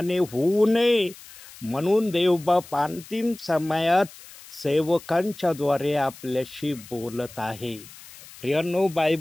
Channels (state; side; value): noise; left; hiss, 19 dB below the sound